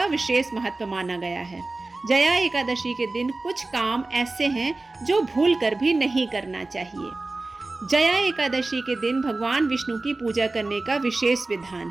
विशेष महत्व माना गया है। जया एकादशी के दिन कुछ काम ऐसे हैं जो भूल कर भी नहीं करना चाहिए। जया एकादशी के दिन भगवान विष्णु की पूजा करने का विशेष विधान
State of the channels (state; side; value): quieter; left; 3.2 dB